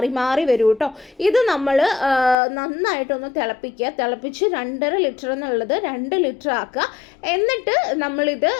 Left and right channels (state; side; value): drops out; right; at 2.4 s